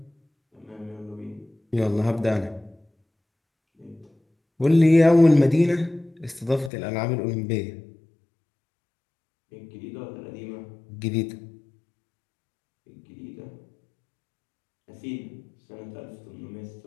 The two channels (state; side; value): drops out; right; at 6.7 s